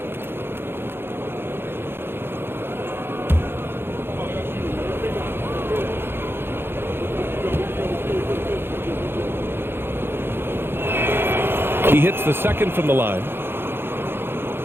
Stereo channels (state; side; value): late; left; 0.11 ms